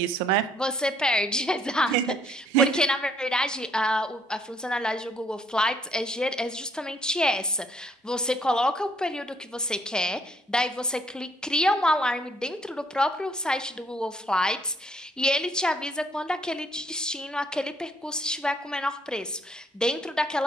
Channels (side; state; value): both; normal; correlation 0.66